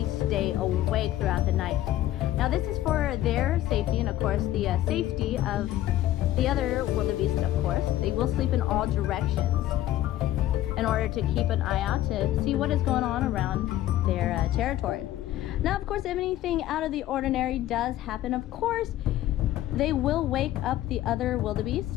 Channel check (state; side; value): quieter; right; 13.9 dB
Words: stay awake throughout the night. Now, this is for their safety and, of course, the safety of the other wildebeest, of course. They will sleep in all directions in order to keep an eye out to see what is going on around their territory. Now, of course, if anything out of the ordinary does happen, of course, they will wake up the other